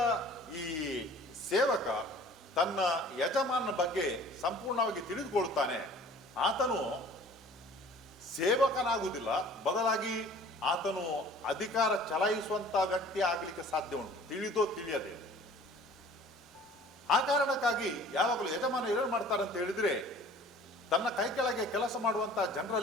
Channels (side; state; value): both; normal; correlation 0.49